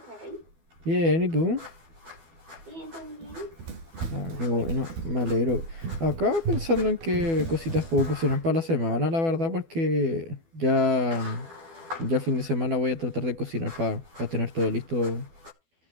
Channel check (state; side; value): late; left; 12 ms